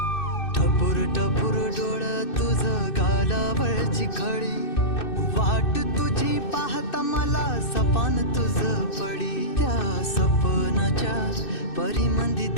टपूर टपूर डोळं तुझं गालावरची खळी वाट तुझी पाहता मला सपान तुझं पडी त्या सपनाच्या परिमंदी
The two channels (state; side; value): late; right; 2.6 ms